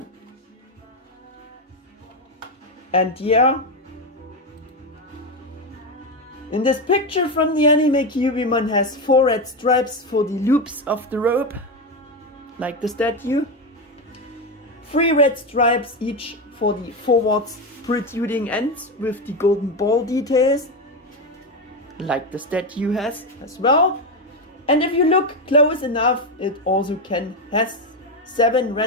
And yeah, in this picture from the anime, Kyubimon has 4 red stripes for the loops of the robe, like the statue. 3 red stripes each for the forwards protruding ends with the golden ball details, like the statue has as well. And if you look close enough, it also has 7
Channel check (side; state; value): both; normal; correlation 0.12